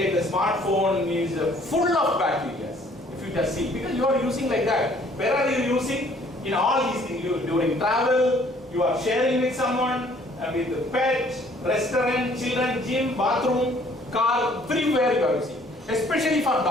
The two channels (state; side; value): normal; both; correlation 0.59